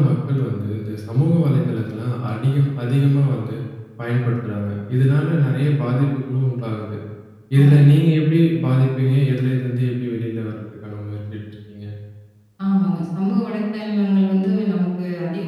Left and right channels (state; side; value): identical; both; correlation 1.00